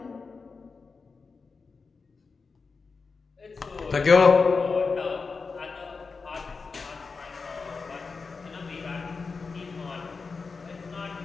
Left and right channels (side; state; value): right; quieter; 4.6 dB